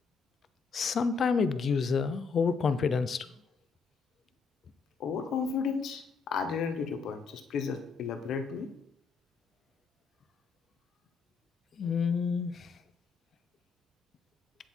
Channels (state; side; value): quieter; right; 5.2 dB